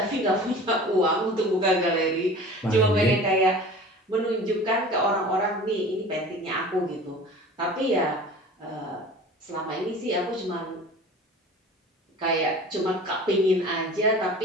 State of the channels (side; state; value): both; normal; correlation 0.40